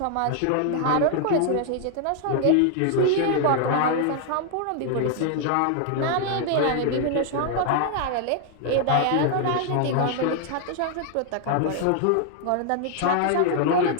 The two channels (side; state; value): both; different; correlation 0.00